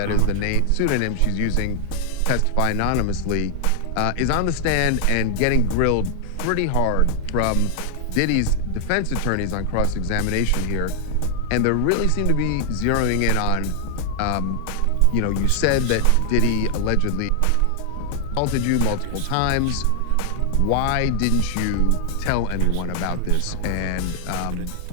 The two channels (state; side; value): different; both; correlation 0.00